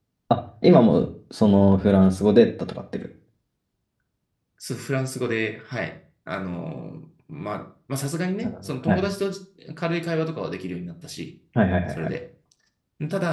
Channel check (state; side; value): identical; both; correlation 1.00